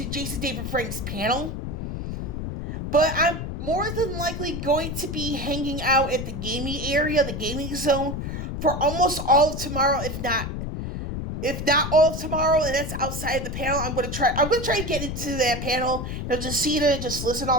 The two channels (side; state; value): left; noise; rumble, 5 dB below the sound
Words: Jason David Frank's panel. But I'm more than likely going to be hanging out at the gaming area, the gaming zone, for almost all of tomorrow, if not all of tomorrow, and that's outside of the panel. I'm going to try to get into that panel, just see it and just listen to